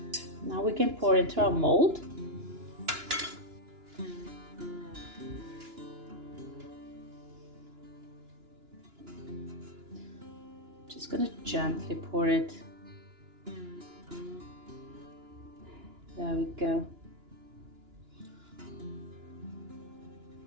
now we can pour into our mold. Just gonna gently pour it. There we go.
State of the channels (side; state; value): left; late; 2.9 ms